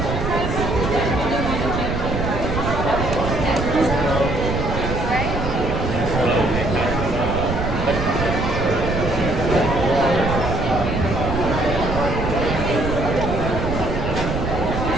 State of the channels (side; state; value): right; noise; rumble, 3 dB below the sound